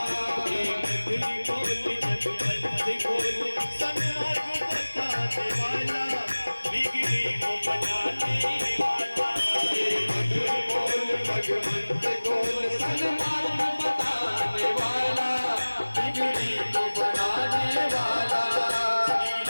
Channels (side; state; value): both; inverted; correlation -1.00